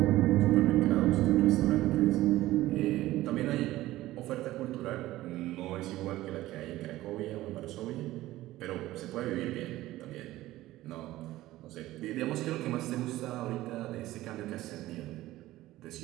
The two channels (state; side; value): quieter; left; 16.2 dB